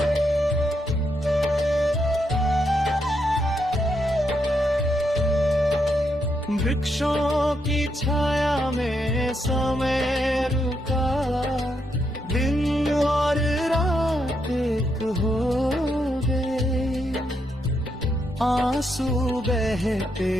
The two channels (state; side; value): normal; both; correlation 0.80